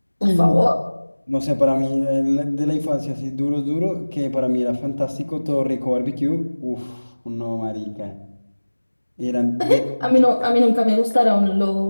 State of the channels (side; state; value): both; inverted; correlation -1.00